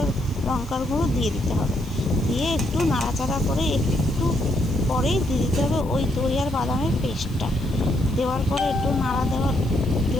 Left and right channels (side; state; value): left; noise; hiss, 23 dB below the sound